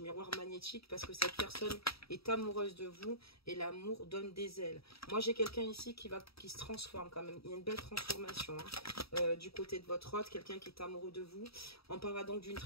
miroir magnétique parce que cette personne est amoureuse de vous et l'amour donne des ailes. Moi, j'ai quelqu'un ici qui se transforme quand même. Il y a une belle transformation du côté de votre autre, quelqu'un qui est amoureux de vous. On parlera donc d'une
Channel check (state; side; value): late; right; 0.77 ms